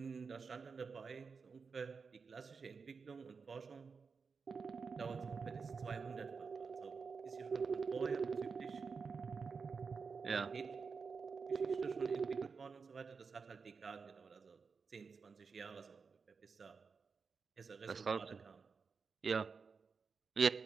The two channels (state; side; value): quieter; left; 5.2 dB